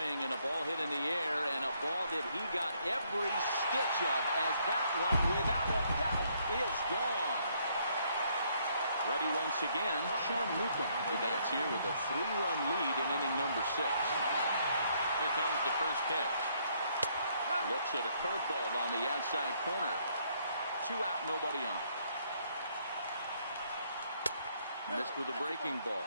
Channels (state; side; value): inverted; both; correlation -0.69